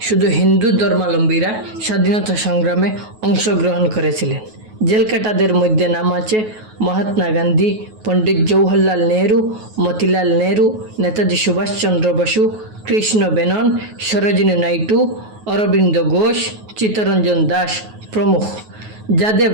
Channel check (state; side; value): late; left; 9.4 ms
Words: শুধু হিন্দু ধর্মাবলম্বীরা স্বাধীনতা সংগ্রামে অংশগ্রহণ করেছিলেন। জেলকাটাদের মধ্যে নাম আছে মহাত্মা গান্ধী, পণ্ডিত জওহরলাল নেহরু, মতিলাল নেহরু, নেতাজি সুভাষচন্দ্র বসু, কৃষ্ণ মেনন, সরোজিনী নাইডু, অরবিন্দ ঘোষ, চিত্তরঞ্জন দাস প্রমুখ। যাদের